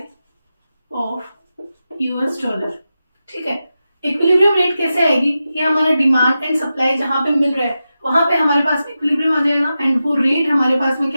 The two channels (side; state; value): both; inverted; correlation -0.91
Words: of US dollar. ठीक है, इक्विलिब्रियम रेट कैसे आएगी? ये हमारा डिमांड एंड सप्लाई जहां पे मिल रहा है वहां पे हमारे पास में इक्विलिब्रियम आ जाएगा एंड वो रेट हमारे पास में